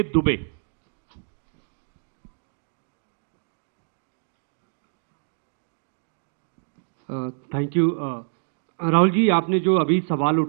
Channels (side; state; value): left; silent; digital silence